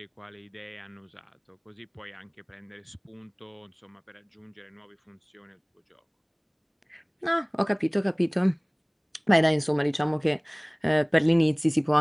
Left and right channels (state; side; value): identical; both; correlation 1.00